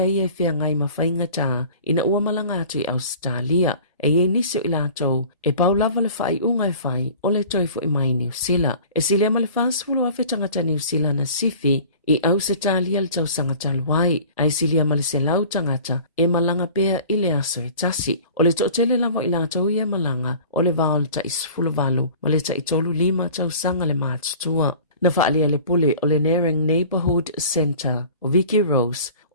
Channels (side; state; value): both; inverted; correlation -0.44